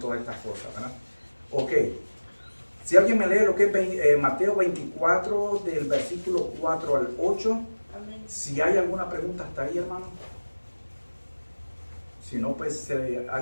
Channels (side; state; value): both; inverted; correlation -1.00